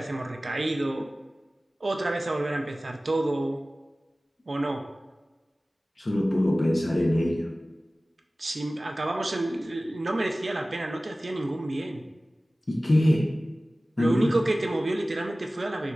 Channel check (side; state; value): both; normal; correlation 0.97